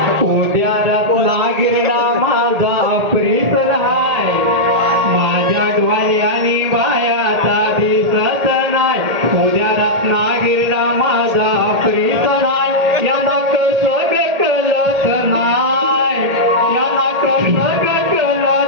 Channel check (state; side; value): late; left; 1.8 ms